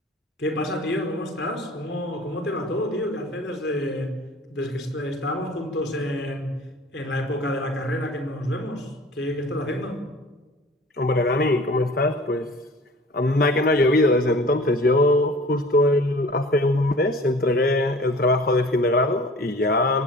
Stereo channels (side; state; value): both; normal; correlation 0.45